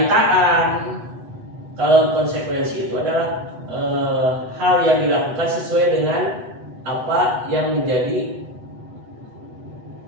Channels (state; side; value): late; left; 8.1 ms